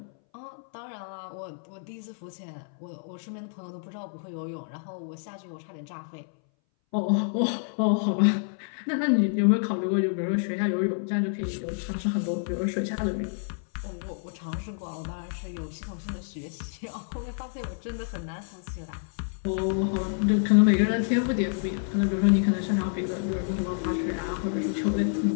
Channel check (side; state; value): right; silent; 59 dB below the other